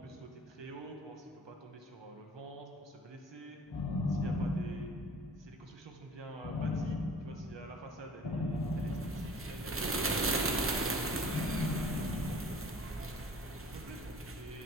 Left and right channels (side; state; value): both; normal; correlation 0.48